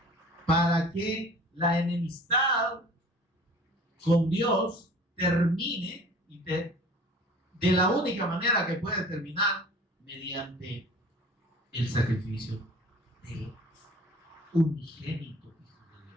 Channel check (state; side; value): normal; both; correlation 0.46